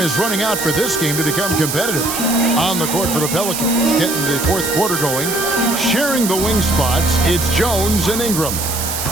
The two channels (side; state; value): right; noise; hiss, 4 dB below the sound